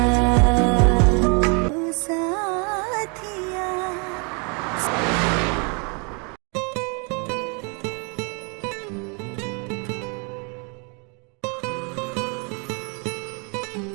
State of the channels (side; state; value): left; quieter; 34.5 dB